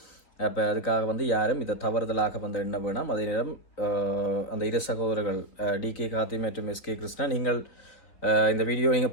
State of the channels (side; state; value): right; late; 3.9 ms